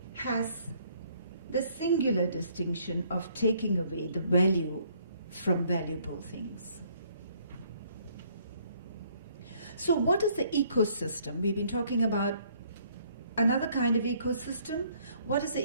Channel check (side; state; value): both; inverted; correlation -0.64